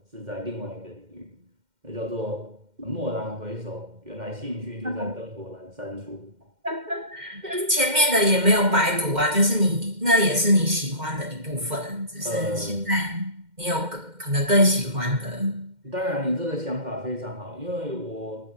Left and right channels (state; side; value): late; left; 2.1 ms